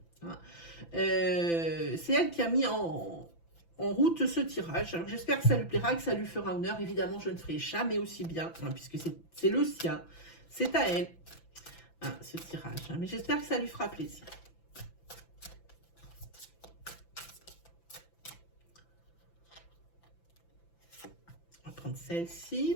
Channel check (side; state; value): right; late; 5.9 ms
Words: C'est elle qui a mis en route ce tirage. Alors j'espère que ça lui plaira, que ça lui fera honneur. Évidemment, je ne ferai jamais aussi bien, hein, puisque c'est le sien. C'est à elle, hein, ce tirage. Hein, mais j'espère que ça lui fera plaisir. On va prendre